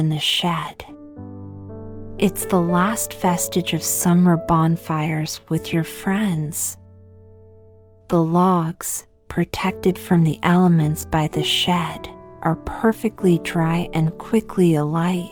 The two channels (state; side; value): identical; both; correlation 1.00